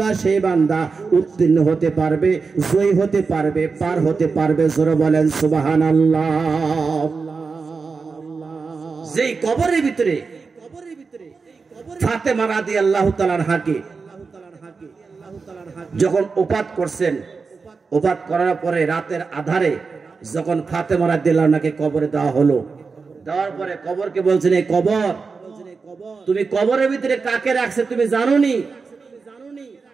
সেই বান্দা উত্তীর্ণ হতে পারবে, জয়ী হতে পারবে, পার হতে পারবে। জোরে বলেন সুবহানাল্লাহ। যেই কবরের ভিতরে ফাতেমা রাদিয়াল্লাহু তাআলা আনহাকে যখন ওফাত করছেন, ওফাত করার পরে রাতের আধারে যখন ফাতেমা রাদিয়াল্লাহু আনহাকে কবরে দেওয়া হলো, দেওয়ার পরে কবরকে বলছেন, এই কবর, তুমি কবরের ভিতরে কাকে রাখছে তুমি জানোনি?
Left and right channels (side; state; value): left; quieter; 4.7 dB